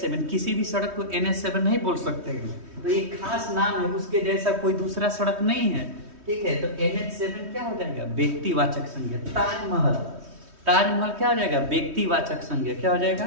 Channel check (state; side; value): late; left; 3.2 ms